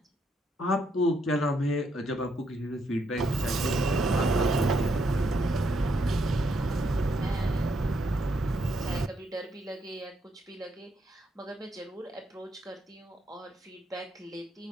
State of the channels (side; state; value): both; normal; correlation 0.76